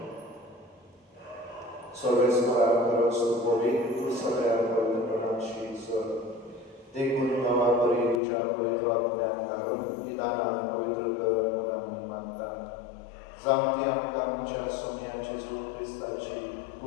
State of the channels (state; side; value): drops out; right; at 8.2 s